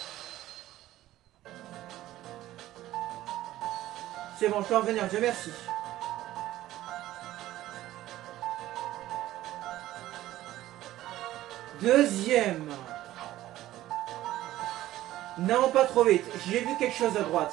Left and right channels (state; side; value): quieter; left; 14.8 dB